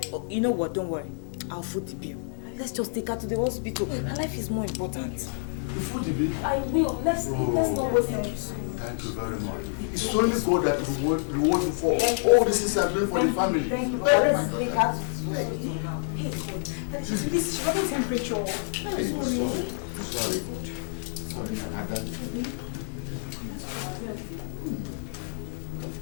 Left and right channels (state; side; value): silent; right; digital silence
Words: You know what? Don't worry. I'll foot the bill. Let's just take her to the hospital. Her life is more important. You foot the bill? I will. Let's not waste time. Thank you very much. It's only God that reward you for all the things you are doing for the family. Thank you. Let's take her to the hospital now. Hey, God. Daddy, she's running temperature. Hey, sorry. Sorry, Ada.